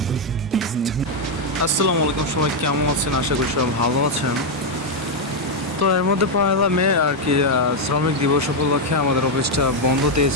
আসসালামু আলাইকুম, সবাই কেমন আছেন? আশা করি সবাই ভালো আছেন। তো এর মধ্যে 1 মে আর কি শ্রমিক দিবস উপলক্ষে আমাদের অফিসটা বন্ধ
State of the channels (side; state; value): both; normal; correlation 0.01